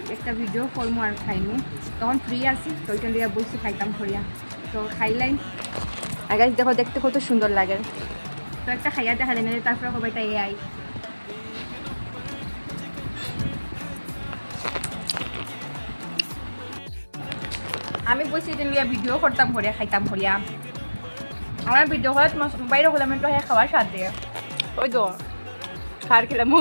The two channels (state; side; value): inverted; both; correlation -1.00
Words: একটা ভিডিও করবো আর খাইমু। তখন ফ্রি আছি, তো ওইটা লিয়ে বলছি খাইতাম করিয়া। তো খাইলাই আর গাইস দেখো দেখতে কত সুন্দর লাগে। তো একটা খাইয়া দেখা যায় না, তারপরে সবাইটা এ আই। আমি বলছি যে লিয়া ভিডিও করতাম করিয়া খাইতাম করিয়া। আমার ভিডিও করে বাইরে হলাম একটু খাওয়ার স্বাদ দিয়ে। ওই তো খার খেলাম,